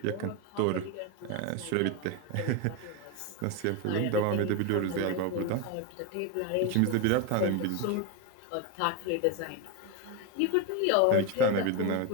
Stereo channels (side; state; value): both; different; correlation 0.02